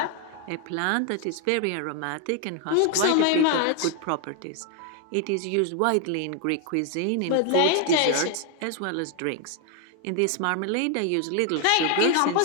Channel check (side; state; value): both; different; correlation 0.00